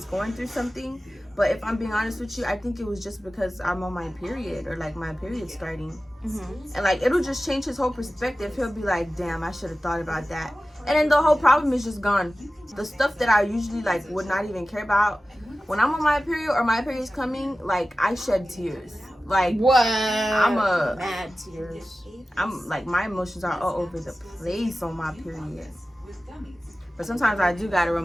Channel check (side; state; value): both; normal; correlation 0.95